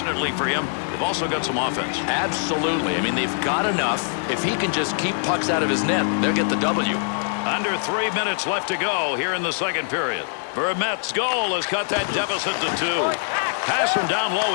for him, they've also got some offense. Absolutely. I mean, they've got enough. If he can just keep pucks out of his net, they'll get the W. Under 3 minutes left to go here in the second period. Vermette's goal has cut that deficit to 2. Pass from down low.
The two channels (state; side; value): silent; right; digital silence